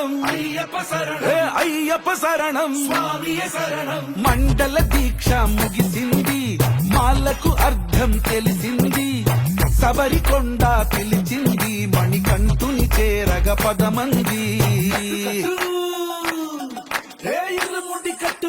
ஐயப்ப சரணம் అయ్యప్ప శరణం స్వామియ శరణం మండల దీక్ష ముగిసింది మాలకు అర్థం తెలిసింది శబరికొండ పిలిచింది మణికంఠుని చేరగ పదమంది ఇరుముడి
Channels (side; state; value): both; identical; correlation 1.00